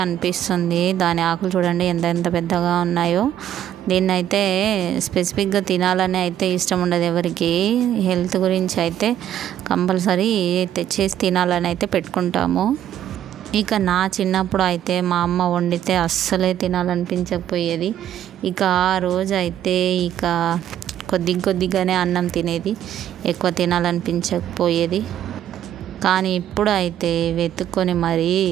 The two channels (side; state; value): left; quieter; 11.0 dB